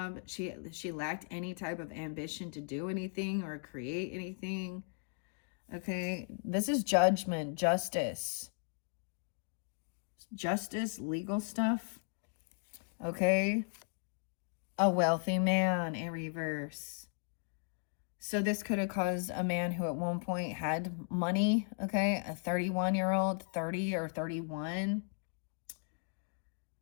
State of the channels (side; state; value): right; silent; 53 dB below the other